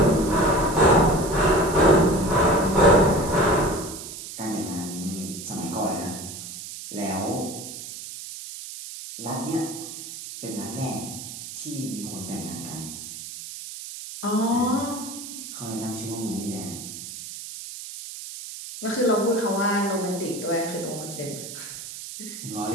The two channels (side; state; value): right; noise; hiss, 11 dB below the sound